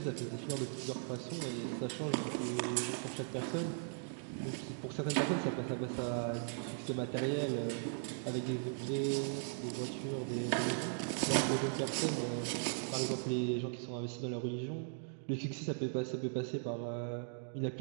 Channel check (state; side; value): silent; left; digital silence